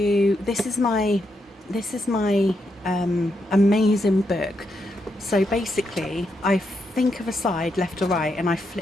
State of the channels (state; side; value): normal; both; correlation 0.81